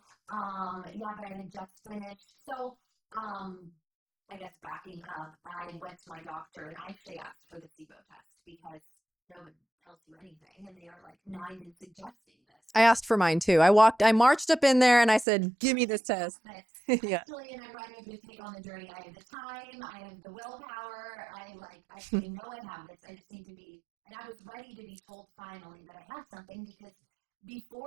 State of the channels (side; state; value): left; drops out; at 15.2 s